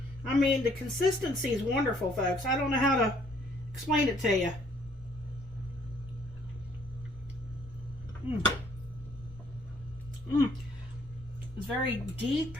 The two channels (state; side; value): normal; both; correlation 0.64